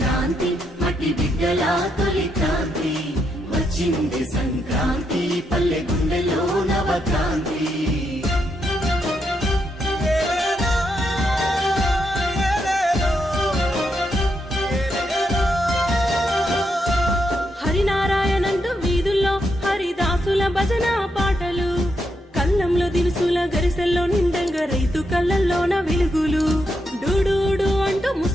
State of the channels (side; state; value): both; normal; correlation 0.81